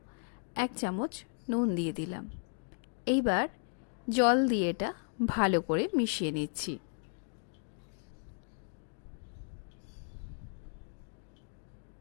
1 চামচ নুন দিয়ে দিলাম। এইবার জল দিয়ে এটা ভালো করে মিশিয়ে নিচ্ছি।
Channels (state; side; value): silent; right; 54 dB below the other